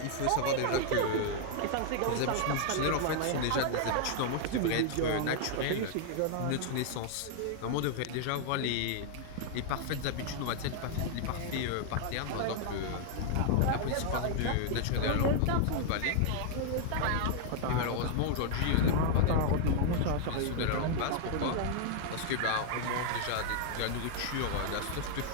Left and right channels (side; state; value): both; different; correlation -0.01